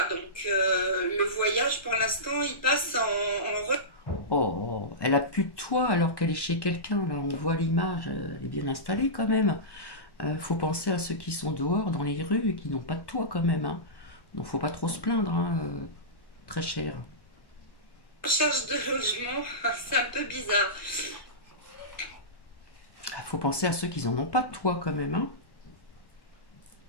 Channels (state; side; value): late; right; 1.1 ms